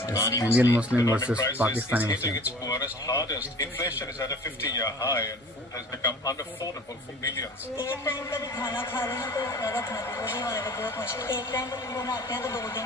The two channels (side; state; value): both; normal; correlation 0.44